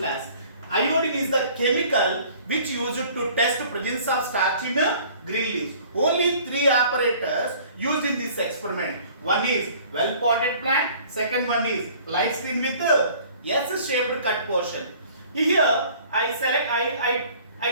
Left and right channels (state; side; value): inverted; both; correlation -0.52